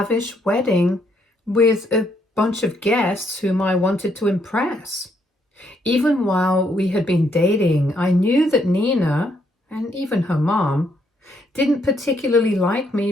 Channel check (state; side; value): normal; both; correlation 0.73